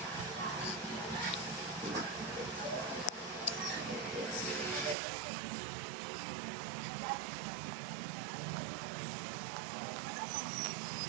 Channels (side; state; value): left; drops out; at 5.0 s